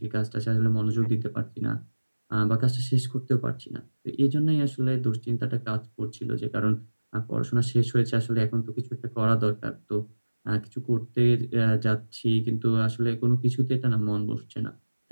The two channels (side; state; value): both; inverted; correlation -1.00